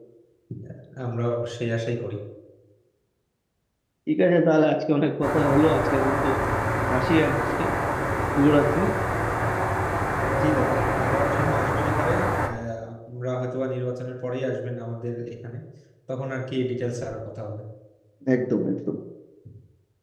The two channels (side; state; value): both; identical; correlation 1.00